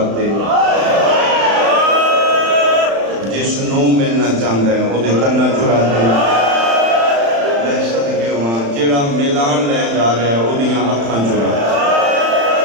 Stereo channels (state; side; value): late; left; 35 ms